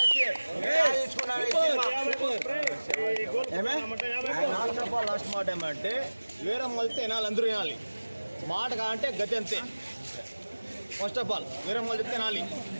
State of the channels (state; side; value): inverted; both; correlation -1.00